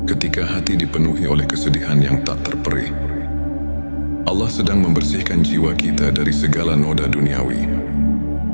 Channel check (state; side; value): inverted; both; correlation -1.00